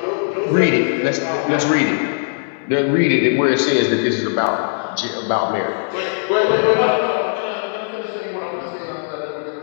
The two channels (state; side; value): silent; right; digital silence